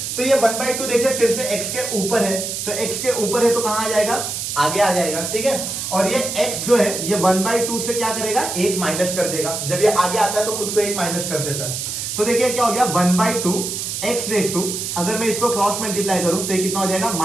तो ये 1/2 देखिए फिर से x के ऊपर है, तो x के ऊपर है तो कहां आ जाएगा, आगे आ जाएगा। ठीक है, और ये x जो है ये 1/2 से क्या करेगा, एक माइनस कर देगा। जब ये आगे आता है तो खुद को एक माइनस कर देता है, तो देखिए क्या हो गया 1/2 x रेज टू, अगर मैं इसको क्रॉस मल्टीप्लाई करूं तो ये कितना हो जाएगा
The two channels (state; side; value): noise; right; hiss, 4 dB below the sound